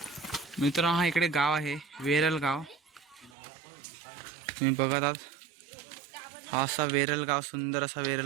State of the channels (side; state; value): left; drops out; at 3.4 s